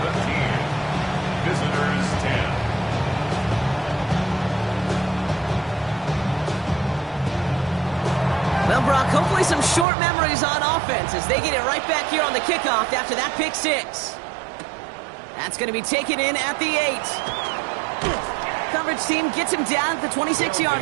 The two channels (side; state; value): left; drops out; at 9.9 s